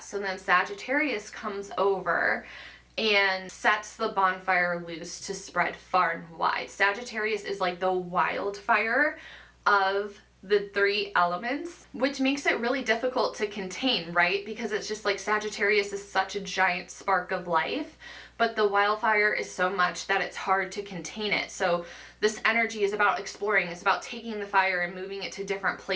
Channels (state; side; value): identical; both; correlation 1.00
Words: So then Sagittarius comes over and sets the bonfire loose to spread far and wide. Sagittarius is like the wildfire of the three elements, which makes it really difficult to contain, right? Because it's just like Sagittarius is such a giant spark of life, but the wildfire is so much that it's hard to contain it. So this energy is about exploring. It's about taking the fire and moving it to different